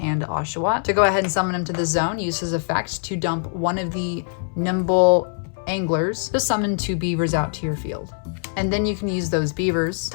Oshawott to go ahead and summon him to the zone. Use his effect to dump one of the Nimble Anglers to summon 2 beavers out to your field. And then you can use those beavers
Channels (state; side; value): silent; right; 62 dB below the other